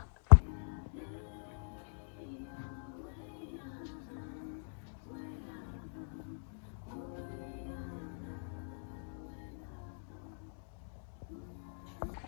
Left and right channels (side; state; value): right; silent; digital silence